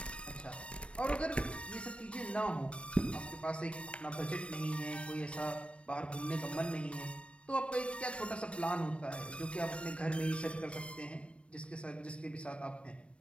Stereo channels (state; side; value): late; right; 0.060 ms